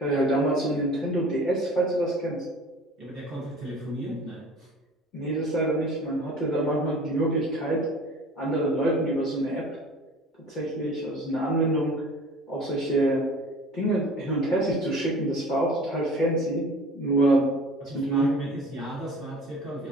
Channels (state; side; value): normal; both; correlation 0.44